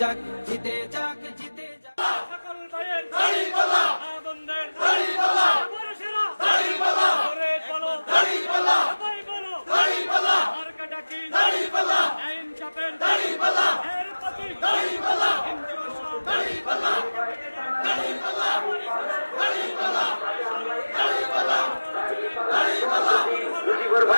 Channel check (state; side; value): inverted; both; correlation -1.00